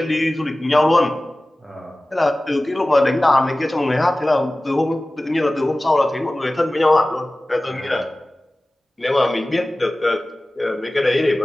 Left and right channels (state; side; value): normal; both; correlation 0.97